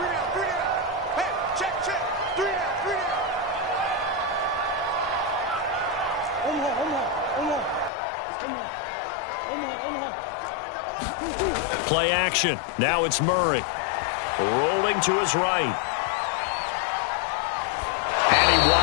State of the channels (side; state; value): right; drops out; at 7.9 s